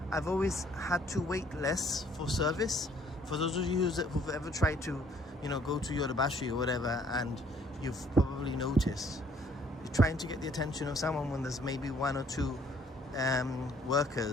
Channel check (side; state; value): both; normal; correlation 0.62